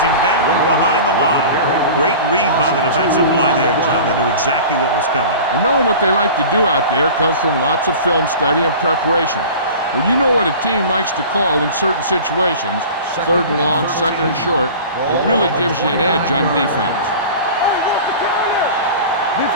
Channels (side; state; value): both; inverted; correlation -0.38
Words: down behind the line. Great read by the defensive line there, John. They knew exactly what was coming. And knowing what they like to do out there comes from lots of film study and preparation. When you know what a team likes to call in certain situations, 3rd and long, 2nd and short, it really gives you an edge on defense.